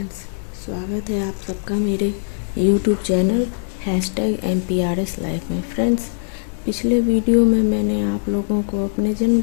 स्वागत है आप सबका मेरे यूट्यूब चैनल #MPRS लाइफ में। फ्रेंड्स, पिछले वीडियो में मैंने आप लोगों को अपने जन्म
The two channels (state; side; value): silent; right; digital silence